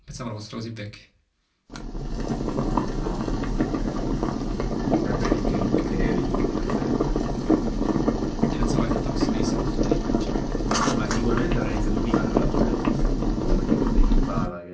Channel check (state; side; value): identical; both; correlation 1.00